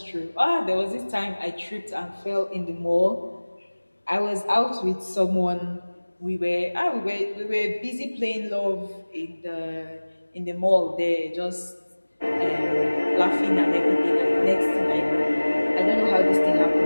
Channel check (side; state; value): both; inverted; correlation -1.00